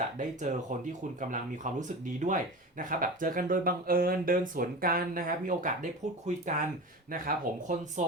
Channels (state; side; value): normal; both; correlation 0.30